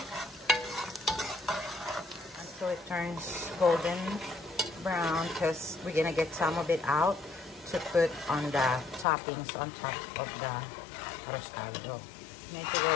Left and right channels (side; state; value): right; drops out; at 9.1 s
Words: Until it turns golden brown, because we're going to get some of it out to put on the toppings on top of the arroz caldo. Medyo